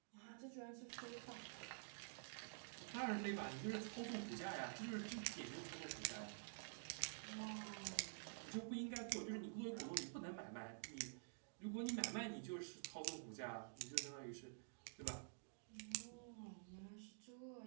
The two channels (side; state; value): left; silent; digital silence